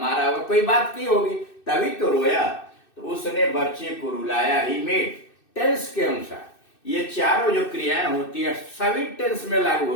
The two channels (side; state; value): right; late; 2.6 ms